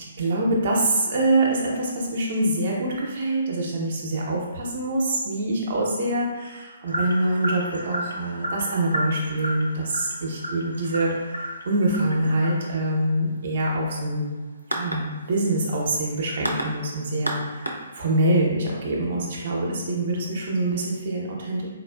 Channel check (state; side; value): inverted; both; correlation -0.65